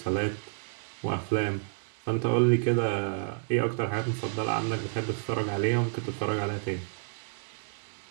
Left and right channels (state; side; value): silent; left; digital silence